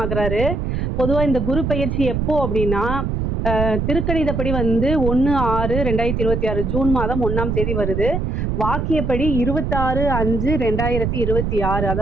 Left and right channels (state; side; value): noise; right; rumble, 1 dB below the sound